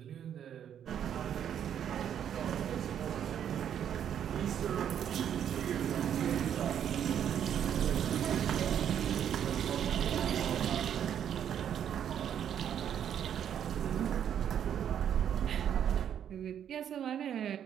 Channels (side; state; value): left; quieter; 9.3 dB